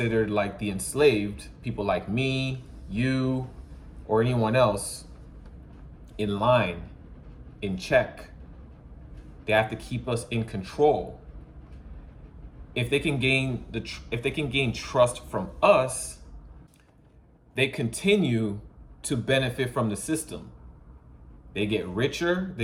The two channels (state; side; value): identical; both; correlation 1.00